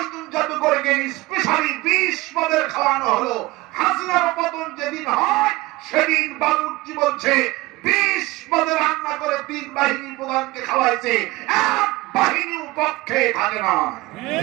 জন জাদুকরকে স্পেশালি 20 পদের খাওয়ানো হলো। হাসিনার পতন যেদিন হয় সেদিন বাবুর্চি বলছে 20 পদে রান্না করে 3 বাহিনী প্রধানকে খাওয়াইছে, এক বাহিনীর পক্ষে থাকে না।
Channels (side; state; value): left; quieter; 20.5 dB